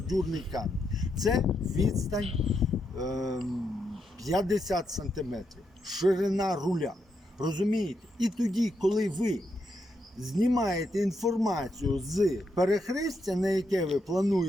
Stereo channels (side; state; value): both; normal; correlation 0.81